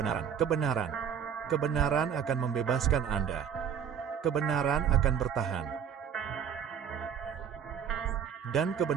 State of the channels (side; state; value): left; quieter; 7.9 dB